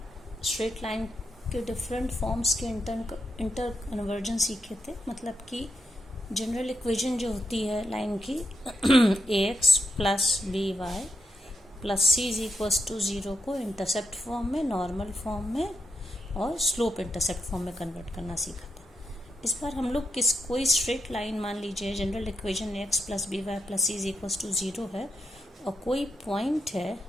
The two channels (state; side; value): normal; both; correlation 0.84